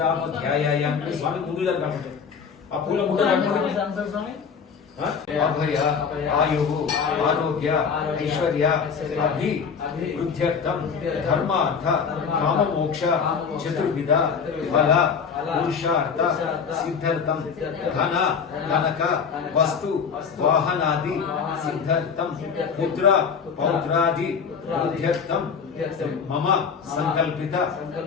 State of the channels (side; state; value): right; quieter; 6.3 dB